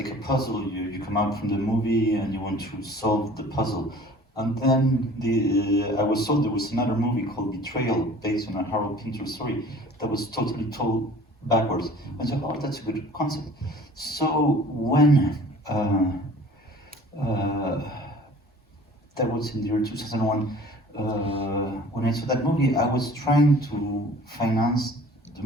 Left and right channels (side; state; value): both; normal; correlation 0.48